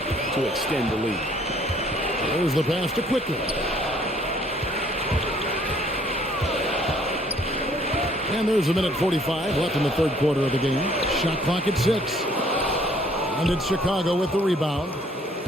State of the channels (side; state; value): both; normal; correlation 0.61